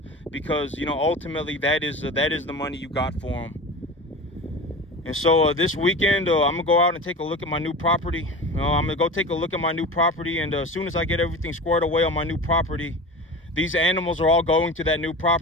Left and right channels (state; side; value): normal; both; correlation 0.32